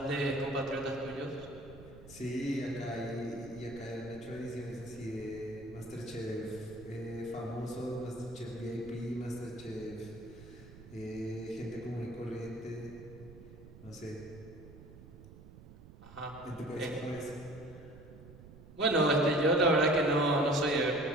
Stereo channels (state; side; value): noise; right; rumble, 18 dB below the sound